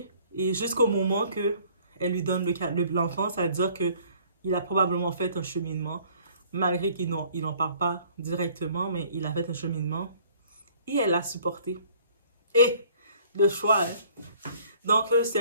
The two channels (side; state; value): both; inverted; correlation -0.56